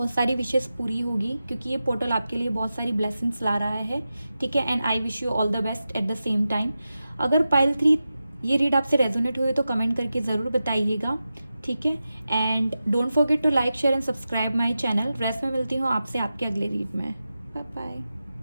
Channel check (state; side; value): inverted; both; correlation -0.92